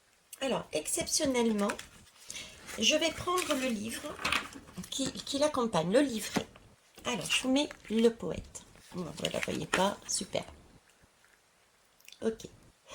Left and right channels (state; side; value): identical; both; correlation 1.00